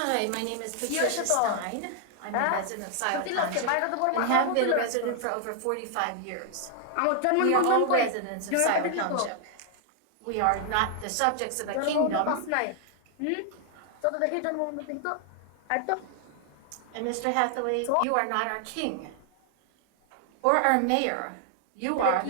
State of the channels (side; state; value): both; different; correlation 0.00